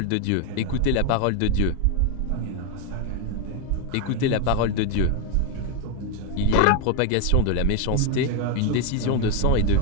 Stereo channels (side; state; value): both; different; correlation 0.01